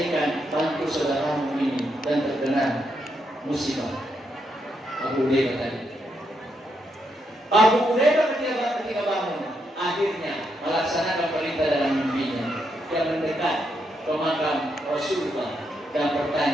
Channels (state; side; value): normal; both; correlation 0.80